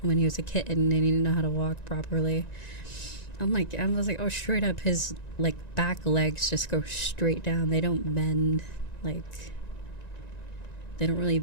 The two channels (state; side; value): late; right; 1.9 ms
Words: when he was a kitten and he didn't know how to walk properly. I was like, oh, straight up his like back legs just go straight down. They don't bend like, they don't really